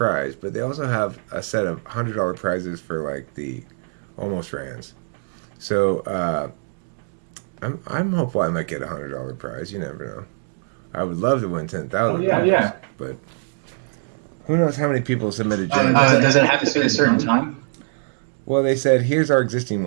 but they also have a set of $100 prizes for like the almost rans. So, I'm hopeful I might get a $100 prize. You never know. I would love to win $10,000. Yeah. But who knows how many people submitted jingles? Does it have to be a certain time? Well, they said, here's our existing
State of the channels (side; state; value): left; silent; digital silence